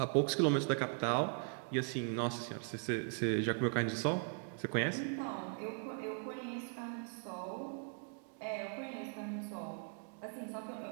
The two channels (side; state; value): left; silent; 52 dB below the other